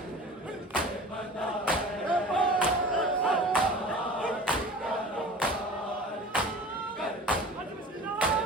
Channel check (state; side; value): normal; both; correlation 0.40